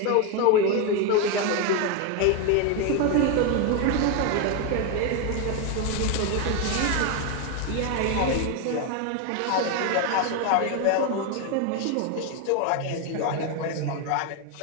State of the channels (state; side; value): different; both; correlation 0.01